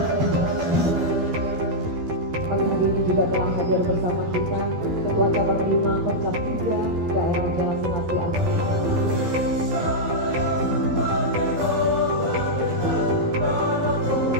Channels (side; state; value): left; late; 12 ms